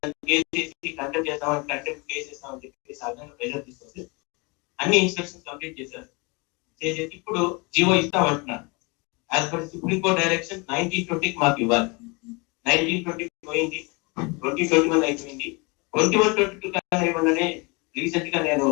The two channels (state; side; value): quieter; right; 28.6 dB